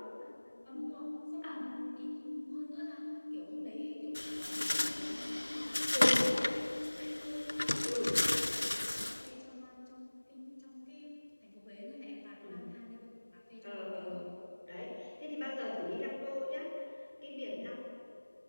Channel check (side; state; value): both; inverted; correlation -1.00